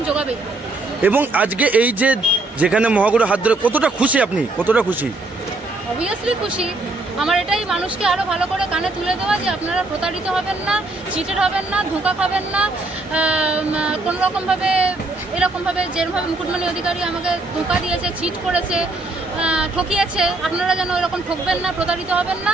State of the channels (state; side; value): quieter; left; 3.0 dB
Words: যোগাবেই। এবং আজকে এই যে যেখানে মহাগুরু হাত ধরে, কতটা খুশি আপনি, কতটা খুশি? অবভিয়াসলি খুশি। আমার এটাই মানুষকে আরও ভালো করে কানে তুলে দেওয়া যে আপনারা প্রতারিত হবেন না, চিটেড হবেন না, ধোঁকা খাবেন না, কোনো রকমভাবে এরকমভাবে যেরকমভাবে মুকুটমণি অধিকারী আমাকে ধোঁকা দিয়েছে, চিট করেছে, ঠকিয়েছে, আপনারা যেন এরকম ঠকবেন না, প্রতারিত হবেন না।